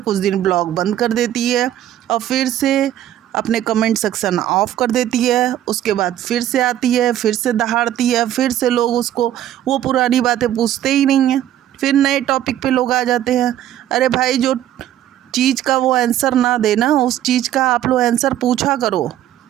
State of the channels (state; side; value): quieter; left; 12.0 dB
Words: दिन ब्लॉग बंद कर देती है और फिर से अपने कमेंट सेक्शन ऑफ कर देती है। उसके बाद फिर से आती है, फिर से दहाड़ती है, फिर से लोग उसको वो पुरानी बातें पूछते ही नहीं हैं, फिर नए टॉपिक पे लोग आ जाते हैं। अरे भाई, जो चीज़ का वो आंसर ना देना, उस चीज़ का आप लोग आंसर पूछा करो